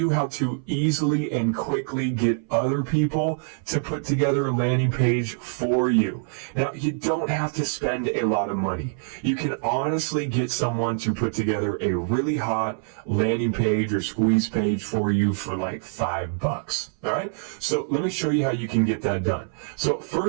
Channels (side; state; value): left; silent; 61 dB below the other